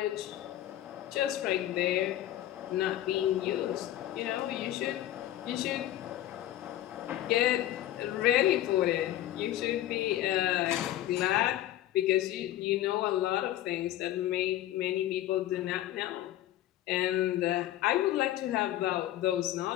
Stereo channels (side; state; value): right; quieter; 13.6 dB